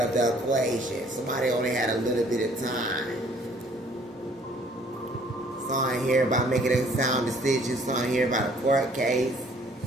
the equation. Somebody only had a little bit of time. Something here about making a sound decision. Something here about a court case.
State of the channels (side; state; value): both; normal; correlation 0.58